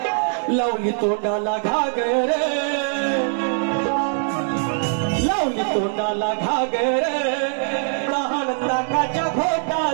लावली तोंडाला घागर लावली तोंडाला घागर लहान ताकाच्या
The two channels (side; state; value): left; silent; digital silence